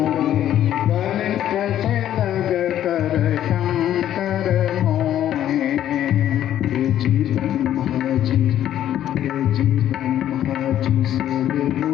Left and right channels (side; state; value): right; quieter; 11.5 dB